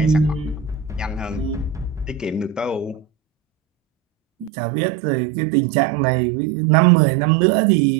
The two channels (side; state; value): left; drops out; at 4.5 s